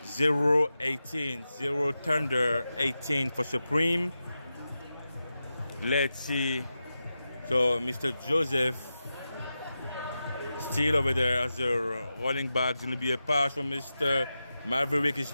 0-18, 0 Thunder, 18 for Supreme. Let's see. So Mr. Joseph still over there as a running back. It's going to be a pass from Mr. Maverick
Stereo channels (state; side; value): inverted; both; correlation -0.91